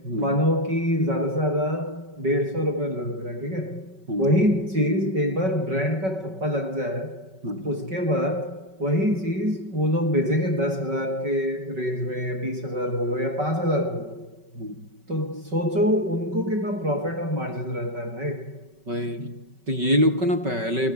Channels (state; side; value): late; left; 5.3 ms